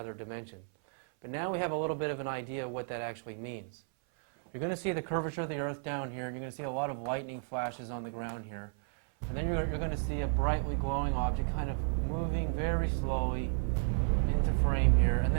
dimension. But now we have a little bit of an idea of what that actually means. You're going to see the curvature of the Earth down here, and you're going to see a lot of lightning flashes on the ground here. And then you're going to see a brightly glowing object kind of moving very slowly into frame here, and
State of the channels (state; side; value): silent; left; 56 dB below the other